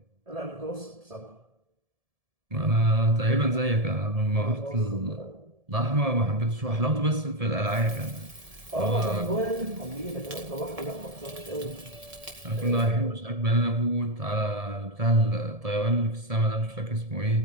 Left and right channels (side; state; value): left; late; 1.7 ms